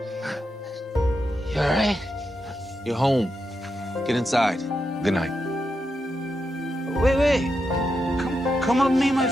You all right? You're home. Get inside. Good night. Wait. Come up and meet my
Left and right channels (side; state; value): both; normal; correlation 0.86